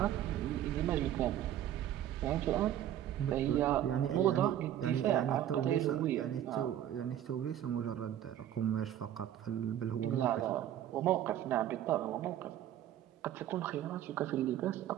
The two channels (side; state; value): left; quieter; 11.5 dB